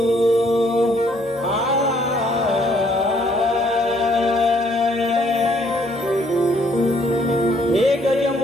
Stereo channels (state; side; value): normal; both; correlation 0.65